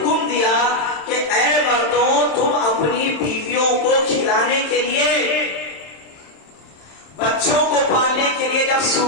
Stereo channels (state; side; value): late; right; 27 ms